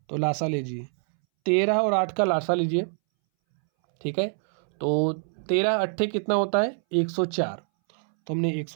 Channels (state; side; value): silent; left; 61 dB below the other